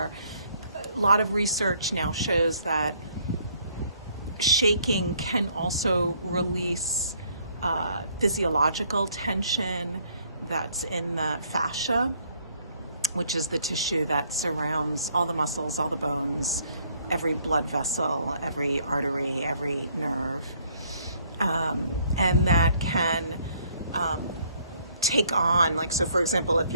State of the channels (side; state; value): both; inverted; correlation -0.65